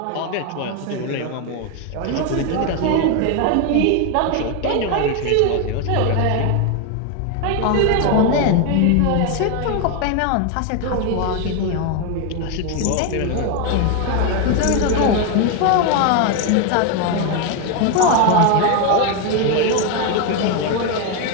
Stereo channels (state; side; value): different; both; correlation 0.01